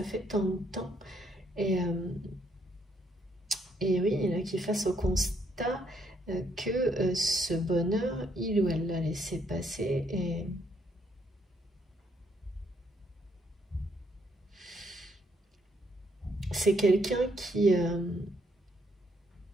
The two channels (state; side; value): normal; both; correlation 0.72